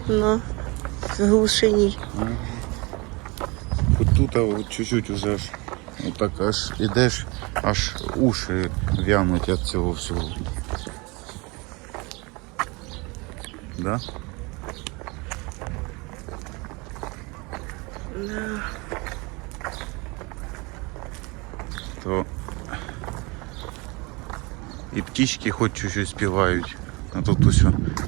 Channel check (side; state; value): left; quieter; 26.7 dB